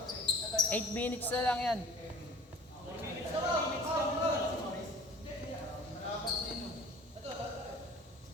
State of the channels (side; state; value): both; normal; correlation 0.46